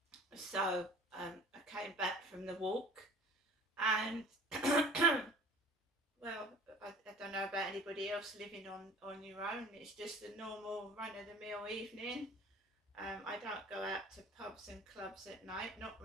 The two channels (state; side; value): normal; both; correlation 0.46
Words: So I came back from the walk, and well, I don't know about anybody else living on your own. It's just a normal run-of-the-mill evening. I don't go out to pubs and clubs at night, not